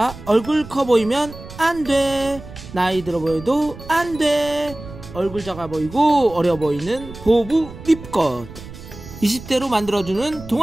얼굴 커 보이면 안돼. 나이 들어 보여도 안돼. 얼굴 작아 보이고 어려 보이는 보부 립컷 20대로 만들어주는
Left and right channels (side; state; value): right; noise; rumble, 15 dB below the sound